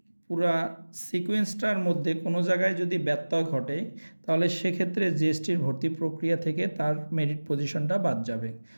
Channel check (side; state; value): both; inverted; correlation -1.00